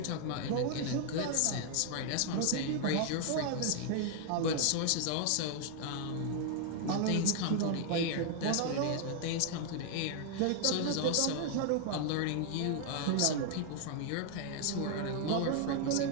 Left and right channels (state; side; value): different; both; correlation 0.00